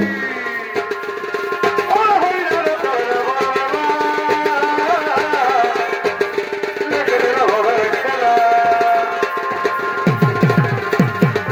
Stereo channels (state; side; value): identical; both; correlation 1.00